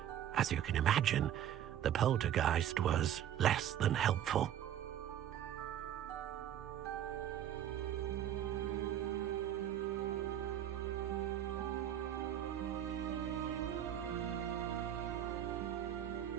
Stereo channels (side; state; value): left; quieter; 10.6 dB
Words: As you can imagine, the poltergeist was less than helpful.